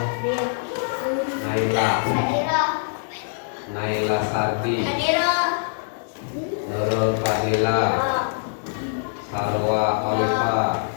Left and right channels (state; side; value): silent; right; digital silence